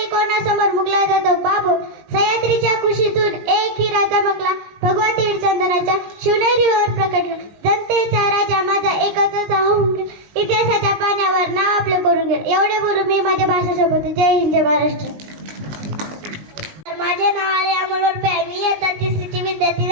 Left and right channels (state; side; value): late; left; 19 ms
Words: कोणासमोर मुकला जातो बाबू सह्याद्रीच्या कुशीतून एक हिरा चमकला भगवा तीड चंदनाच्या शिवनेरीवर प्रकटला जनतेचा राजा माझा एकच होऊन इतिहासाच्या पाण्यावर नाव आपलं करून गेलं. एवढे बोलून मी माझ्या भाषेसोबत जय हिंद जय महाराष्ट्र. माझे नाव आहे अमोल वरपे मी इयत्ता तिसरीची विद्यार्थी